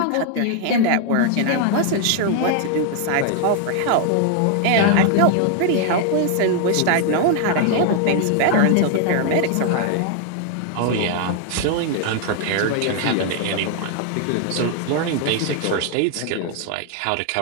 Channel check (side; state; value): both; different; correlation 0.00